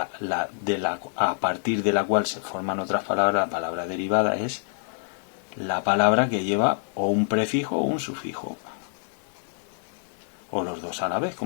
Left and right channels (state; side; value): silent; right; digital silence